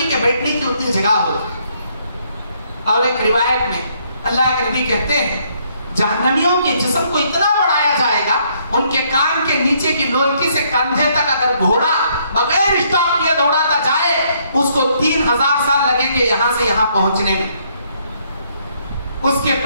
के बैठने की उतनी जगह होगा। और एक रिवायत में अल्लाह के नबी कहते हैं जहन्नमियों के जिस्म को इतना बढ़ाया जाएगा, उनके कान के नीचे की लोलकी से कंधे तक अगर घोड़ा बगैर स्टॉप किए दौड़ाता जाए, उसको 3000 साल लगेंगे यहां से यहां पहुंचने में। उसके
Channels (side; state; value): both; inverted; correlation -0.69